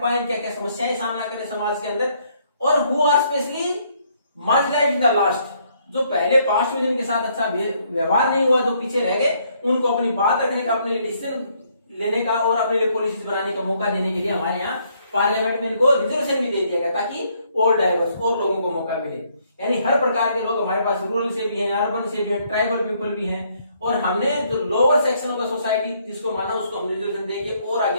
पाए, क्या क्या समस्याएं सामना करें समाज के अंदर, और who are specially marginalised in the last, जो पहले पास्ट में जिनके साथ अच्छा व्यवहार नहीं हुआ, जो पीछे रह गए, उनको अपनी बात रखने का, अपने लिए डिसीजन लेने का और अपने लिए पॉलिसीज बनाने का मौका देने के लिए हमारे यहाँ पार्लियामेंट में इनको रिजर्वेशन भी दे दिया गया, ताकि और डाइवर्स और लोगों को मौका मिले। यानी हर प्रकार के लोग हमारे पास, रूरल से भी हैं, अर्बन से भी हैं, ट्राइबल पीपल भी हैं, और हमने जो lower section of the society जिसको माना उसको हम रिजर्वेशन देके और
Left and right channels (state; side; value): inverted; both; correlation -0.69